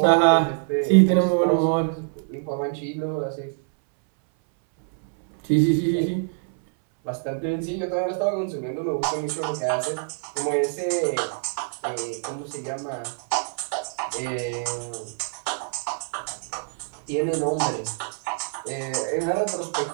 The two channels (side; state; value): left; silent; 62 dB below the other